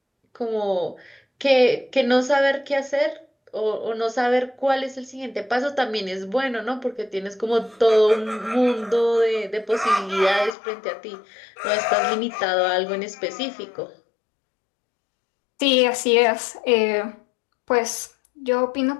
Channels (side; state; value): right; drops out; at 10.6 s